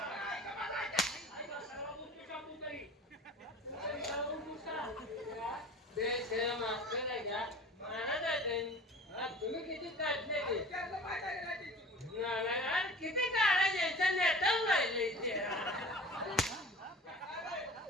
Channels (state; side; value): normal; both; correlation 0.40